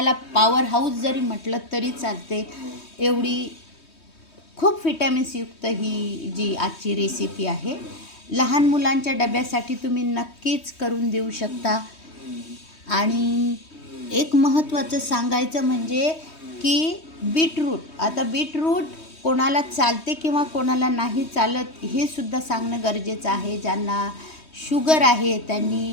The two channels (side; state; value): right; late; 3.2 ms